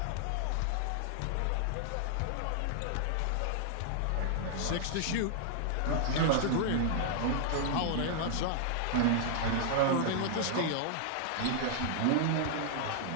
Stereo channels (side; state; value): both; different; correlation -0.01